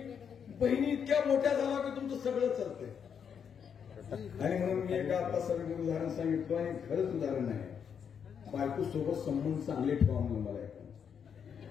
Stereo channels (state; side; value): quieter; right; 7.4 dB